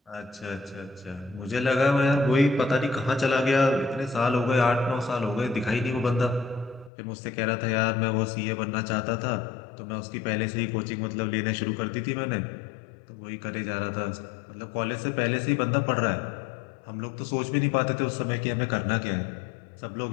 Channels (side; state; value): right; drops out; at 6.9 s